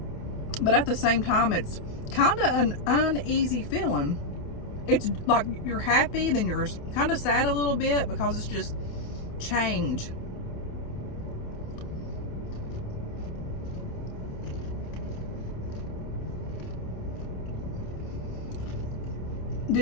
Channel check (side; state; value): right; late; 28 ms